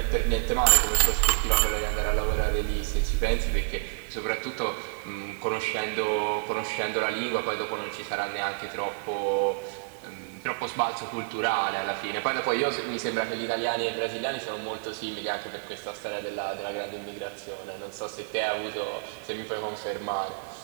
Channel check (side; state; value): left; silent; digital silence